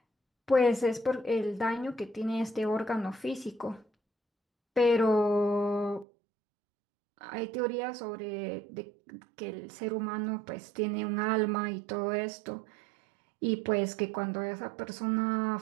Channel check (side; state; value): left; drops out; at 6.1 s